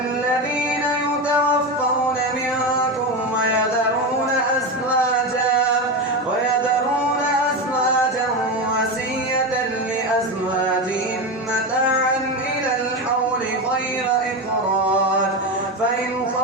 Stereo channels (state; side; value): normal; both; correlation 0.18